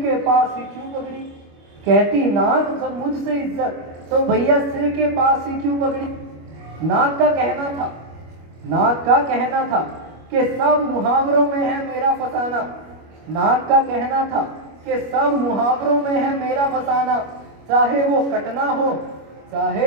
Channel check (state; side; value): late; left; 25 ms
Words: पास ही क्यों पगड़ी। कहती नाक जब मुझसे इज्जत तो भैया सिर के पास ही क्यों पगड़ी। नाक का कहना था कि सब मुहावरों में है मेरा फसाना। नाक का कहना था कि सब मुहावरों में है मेरा फसाना। चाहे वो